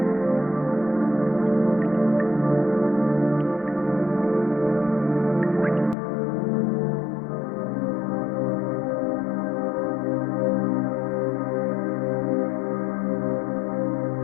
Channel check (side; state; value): right; drops out; at 6.0 s